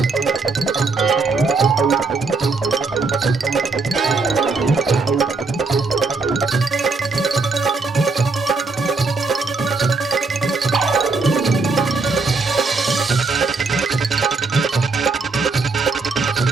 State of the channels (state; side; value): quieter; left; 4.0 dB